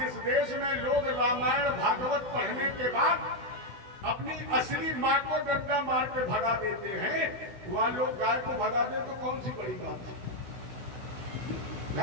देश में लोग रामायण भागवत पढ़ने के बाद अपनी असली माँ को डंडा मार के भगा देते हैं, वहां लोग गाय को भगा दे तो कौन सी बड़ी बात है।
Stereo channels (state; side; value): late; left; 16 ms